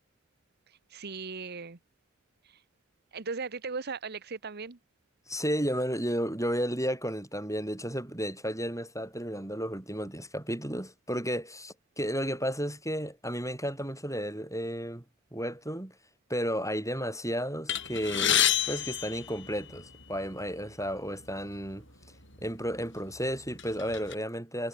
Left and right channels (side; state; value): both; normal; correlation 0.55